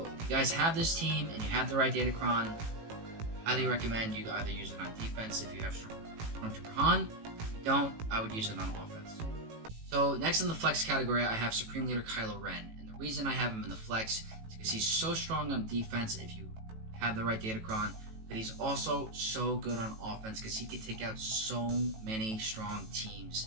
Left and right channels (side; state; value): left; late; 18 ms